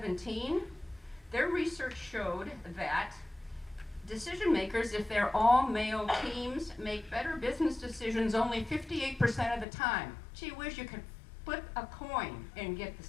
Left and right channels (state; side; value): drops out; right; at 9.7 s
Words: their research showed that decision makers, if they're all male teams, make better business decisions only 58% of the time. Gee whiz, you could flip a coin and get the